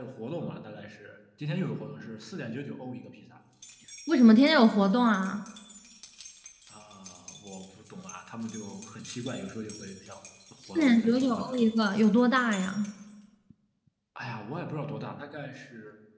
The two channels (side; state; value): both; identical; correlation 1.00